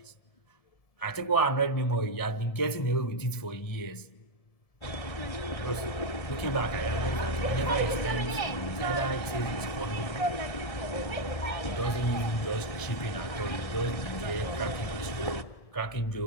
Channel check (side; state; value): right; late; 1.7 ms